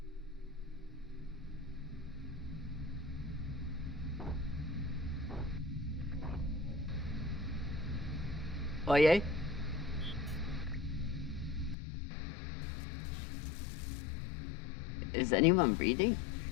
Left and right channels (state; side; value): drops out; right; at 11.8 s